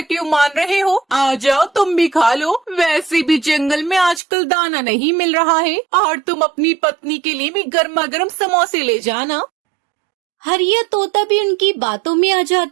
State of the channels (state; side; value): drops out; left; at 4.2 s